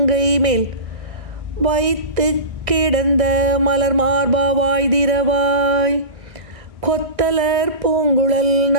மேல் வைத்து கிடந்த மலர் மார்பா வாய்திரவாய். கொத்தலர் பூங்குழல்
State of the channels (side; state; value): left; late; 1.6 ms